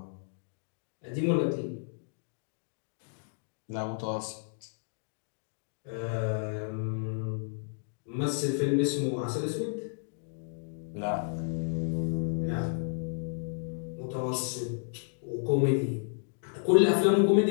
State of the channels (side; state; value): right; silent; digital silence